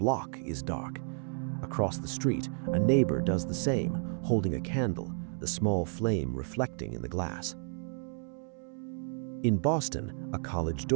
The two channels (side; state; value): left; silent; 56 dB below the other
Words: is dark. Across the street, a neighbor does the same, holding a candle, the small flame reflecting in the glass. In Boston, a college